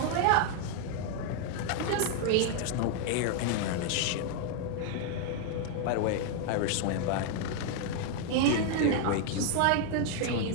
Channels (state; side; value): different; both; correlation 0.00